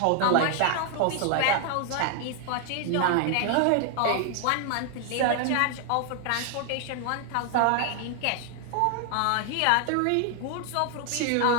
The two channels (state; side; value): different; both; correlation 0.00